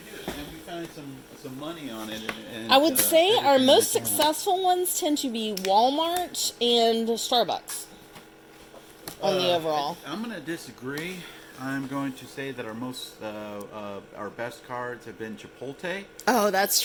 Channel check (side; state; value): both; identical; correlation 1.00